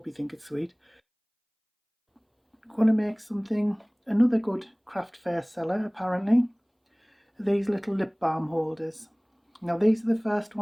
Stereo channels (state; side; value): identical; both; correlation 1.00